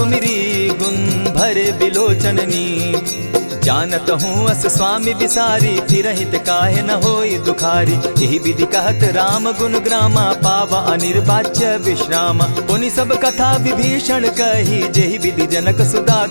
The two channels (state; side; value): inverted; both; correlation -1.00